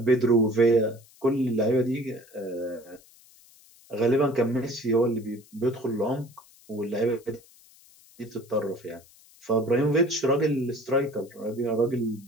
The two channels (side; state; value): left; noise; hiss, 26 dB below the sound